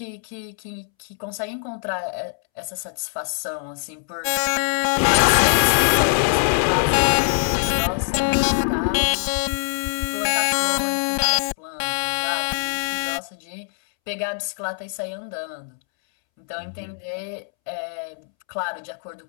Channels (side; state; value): right; silent; 63 dB below the other